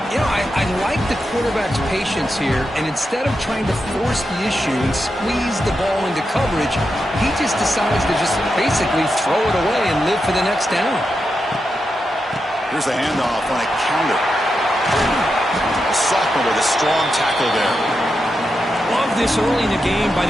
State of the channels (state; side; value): normal; both; correlation 0.87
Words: You know, I like the quarterback's patience here, and instead of trying to force the issue and squeeze the ball into coverage, he just decides to just basically throw it away and live for the next down. Here's the handoff on a counter. A sophomore with a strong tackle there. Love this early in the game by